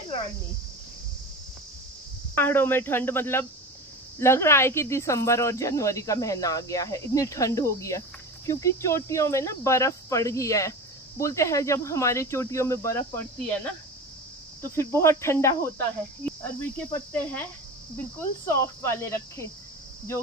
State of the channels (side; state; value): both; normal; correlation 0.30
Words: रानी। पहाड़ों में ठंड, मतलब लग रहा है कि दिसंबर और जनवरी का महीना आ गया है, इतनी ठंड हो गई है। क्योंकि चोटियों में ना बर्फ पड़ गई है। बोलते हैं जब हमारे चोटियों में बर्फ पड़ती है ना तो फिर बहुत ठंडा होता है। अरबी के पत्ते हैं बिल्कुल सॉफ्ट वाले रखे,